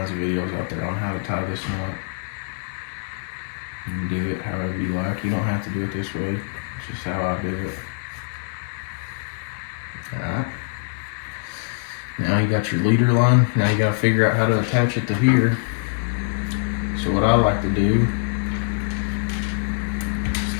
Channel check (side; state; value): right; silent; 63 dB below the other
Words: of videos out there on how to tie this knot. You can do it however you like. You don't have to do it this way. It's just how I do it. Alright. Now you got your leader line. Now you gotta figure out how to attach it to here. So what I like to do is